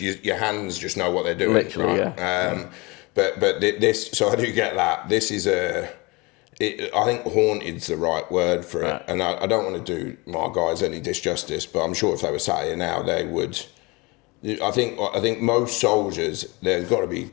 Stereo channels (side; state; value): right; quieter; 25.7 dB